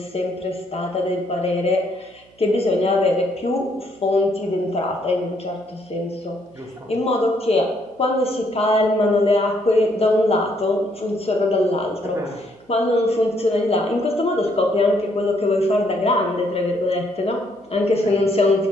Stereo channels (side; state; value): right; noise; hum, 30 dB below the sound